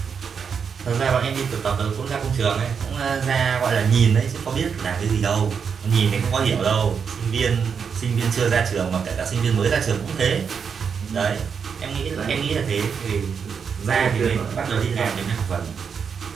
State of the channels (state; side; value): quieter; left; 6.5 dB